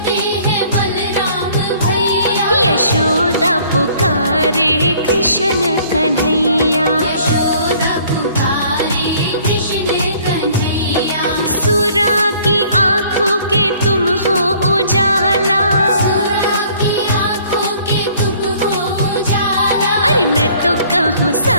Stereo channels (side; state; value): both; inverted; correlation -0.57